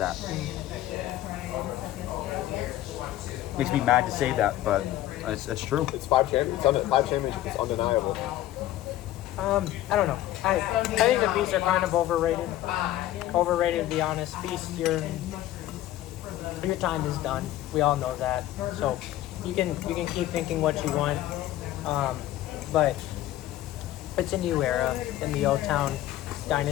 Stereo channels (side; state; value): right; quieter; 14.0 dB